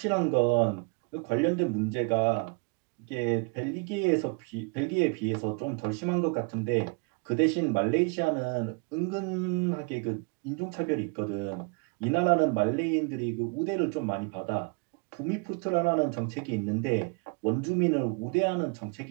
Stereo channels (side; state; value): left; quieter; 33.2 dB